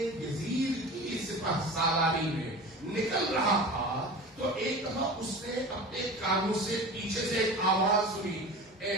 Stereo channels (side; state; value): both; normal; correlation 0.34